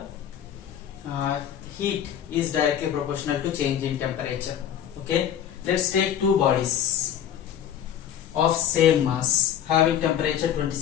heat is directly proportional to change in temperature. Okay, let's take two bodies of same mass having temperature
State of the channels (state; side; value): quieter; right; 9.8 dB